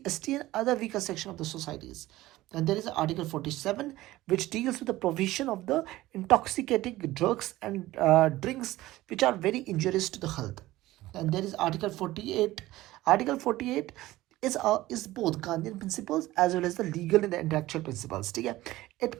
ST, and other weaker section of the societies. And there is Article 47, which deals with the provision of the intoxicating drugs and drinks which are very injurious to the health. And there is Article 48. Article 48 is both Gandhian principles as well as the legal and the intellectual principles. Okay? It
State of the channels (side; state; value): left; quieter; 17.0 dB